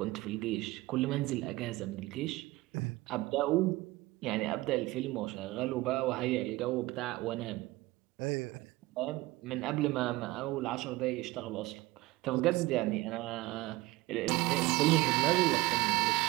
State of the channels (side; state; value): left; quieter; 19.8 dB